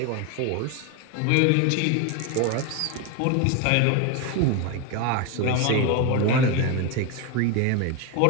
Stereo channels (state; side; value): different; both; correlation 0.02